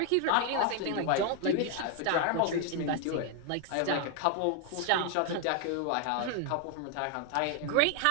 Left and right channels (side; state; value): both; different; correlation 0.00